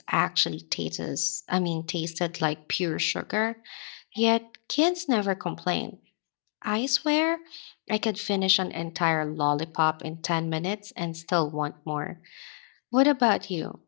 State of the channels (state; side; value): silent; right; 59 dB below the other